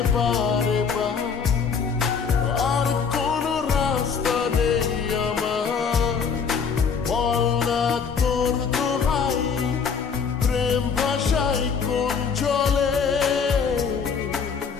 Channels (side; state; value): right; quieter; 6.1 dB